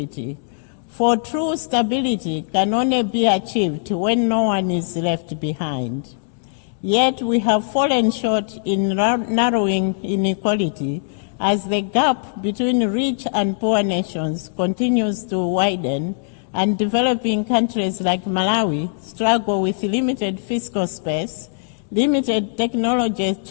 for true stability can only be achieved when no one is left behind. Yet we have fallen short in narrowing inequality as the gap between rich and poor nations continues to widen, and developing countries like Malawi struggle with limited fiscal space, limited technology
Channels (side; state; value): right; silent; digital silence